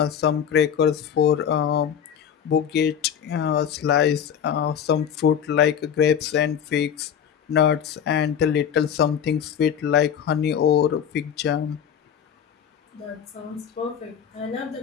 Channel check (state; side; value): quieter; right; 8.4 dB